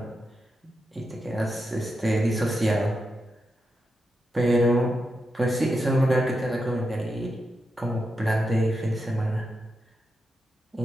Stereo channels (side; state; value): both; normal; correlation 0.87